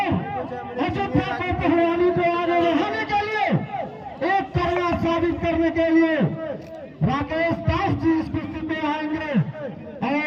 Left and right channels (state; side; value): identical; both; correlation 1.00